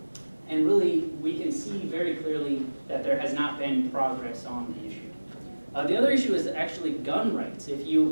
And really, we can see very clearly that there has not been progress on the issue. The other issue is actually gun rights. If you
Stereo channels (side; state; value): both; inverted; correlation -1.00